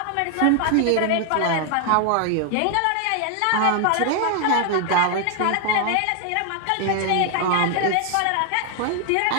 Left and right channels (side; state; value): both; different; correlation 0.00